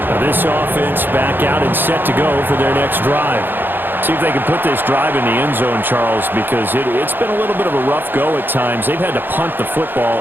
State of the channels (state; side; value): late; left; 0.096 ms